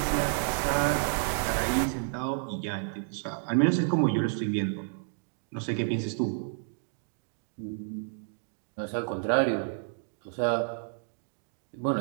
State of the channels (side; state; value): left; silent; digital silence